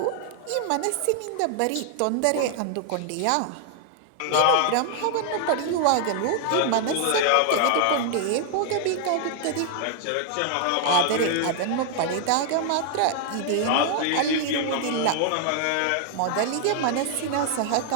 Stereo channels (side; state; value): both; different; correlation 0.00